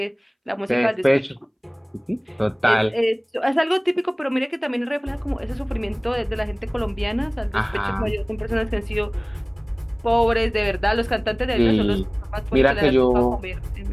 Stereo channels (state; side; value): identical; both; correlation 1.00